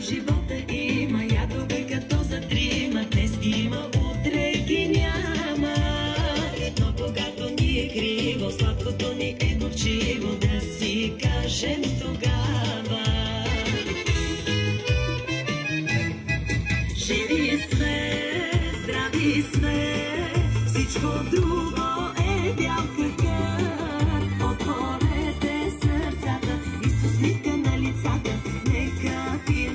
живота има ядове като за трима. Днес ги има, утре ги няма. Но когато ни е криво, сладкото ни е горчиво, да си кажем тогава. Живи сме, здрави сме, всичко друго е бял къркър. Отворете сърцата и с усмивка на лицата, нека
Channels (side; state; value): both; identical; correlation 1.00